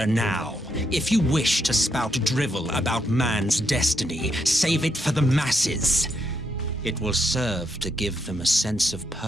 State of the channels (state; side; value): normal; both; correlation 0.79